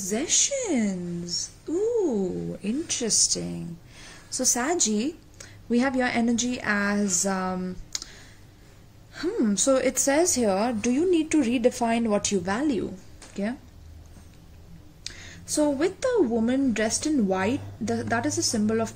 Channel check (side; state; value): both; identical; correlation 1.00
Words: Ooh, interesting. So Saggy, we have your energy as so it says here, do you need to redefine what you value? Okay, so with the woman dressed in white, that is a symbol